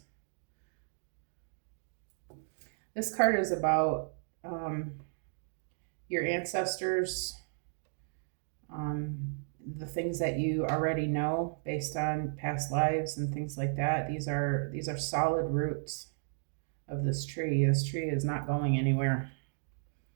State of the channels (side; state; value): left; silent; digital silence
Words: This card is about your ancestors, the things that you already know based on past lives and things like that. These are solid roots of this tree. This tree is not going anywhere.